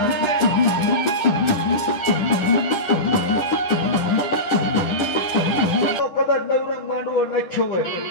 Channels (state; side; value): late; right; 9.8 ms